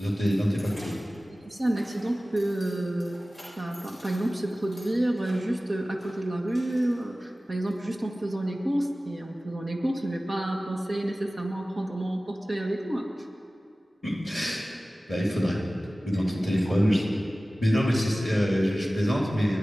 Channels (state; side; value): normal; both; correlation 0.97